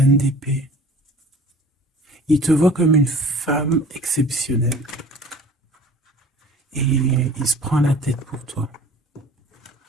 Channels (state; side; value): normal; both; correlation 0.46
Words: d'épée. Il te voit comme une femme exceptionnelle. Et il se prend la tête pour toi.